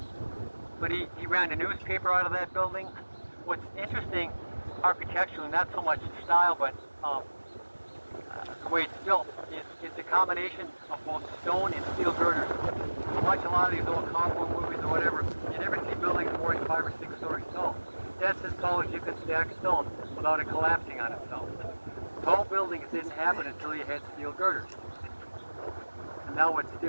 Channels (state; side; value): inverted; both; correlation -1.00